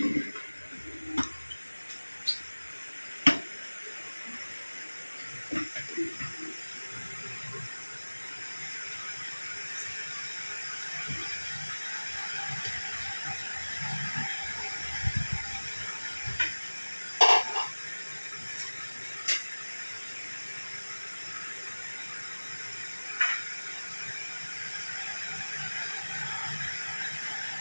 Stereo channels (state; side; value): inverted; both; correlation -1.00